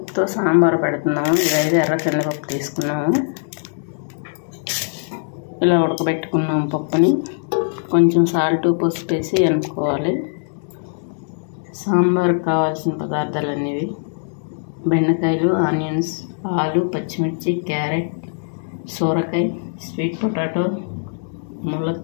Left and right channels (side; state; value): right; silent; digital silence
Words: సాంబార్ పెడుతున్నాము. ఇదైతే ఎర్ర కందిపప్పు తీసుకున్నాము. ఇలా ఉడకబెట్టుకున్నాము పప్పుని. కొంచెం సాల్ట్ పసుపు వేసి ఎనుకోవాలి. సాంబార్కి కావాల్సిన పదార్థాలు అనేవి: బెండకాయలు, ఆనియన్స్, ఆలు, పచ్చిమిర్చి, క్యారెట్, సోరకాయ, స్వీట్ పొటాటో,